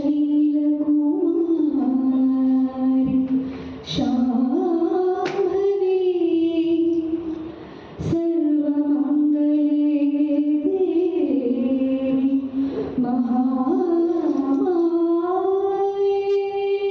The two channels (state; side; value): identical; both; correlation 1.00